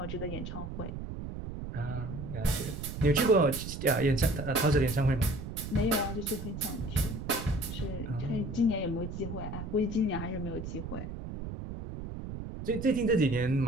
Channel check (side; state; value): right; noise; rumble, 8 dB below the sound